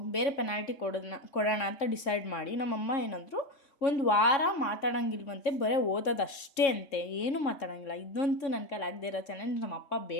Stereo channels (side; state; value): right; late; 3.6 ms